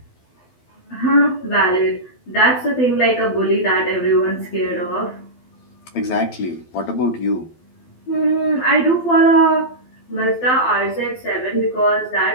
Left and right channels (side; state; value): right; late; 12 ms